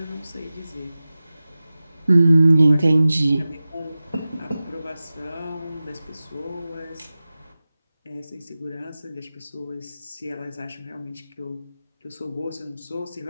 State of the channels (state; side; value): inverted; both; correlation -0.96